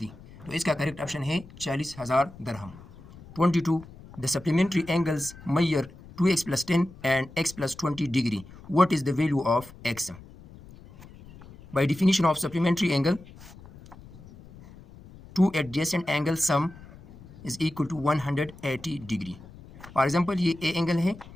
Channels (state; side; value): noise; left; rumble, 19 dB below the sound